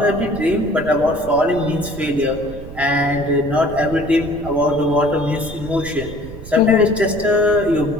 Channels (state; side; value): noise; right; rumble, 14 dB below the sound